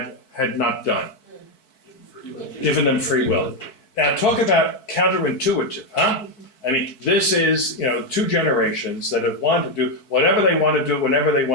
had not done? Given them free will. Now talk about counterintuitive, huh? I mean, this is, two generations that have wanted to do whatever they want to do, whenever they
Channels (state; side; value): late; right; 4.6 ms